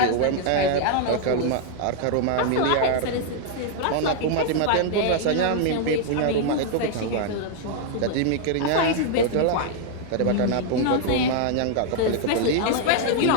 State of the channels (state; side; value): different; both; correlation 0.00